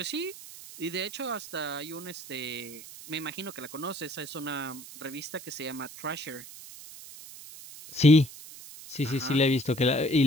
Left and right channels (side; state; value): right; noise; hiss, 15 dB below the sound